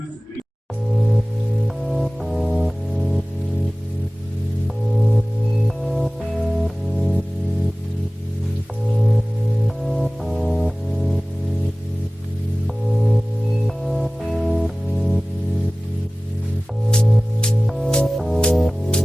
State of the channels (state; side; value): normal; both; correlation 0.98